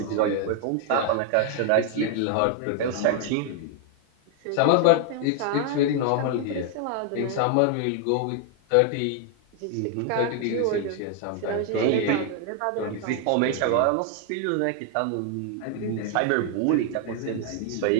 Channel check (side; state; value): both; different; correlation 0.00